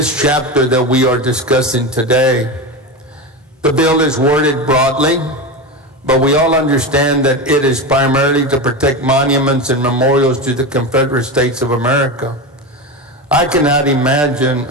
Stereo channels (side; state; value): both; normal; correlation 0.20